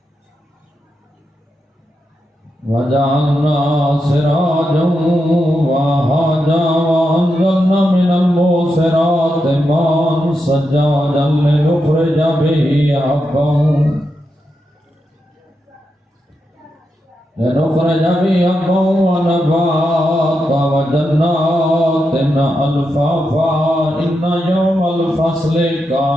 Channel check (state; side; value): normal; both; correlation 0.86